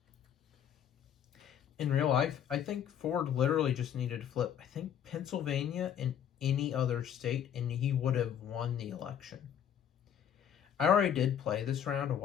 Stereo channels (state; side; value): quieter; right; 9.2 dB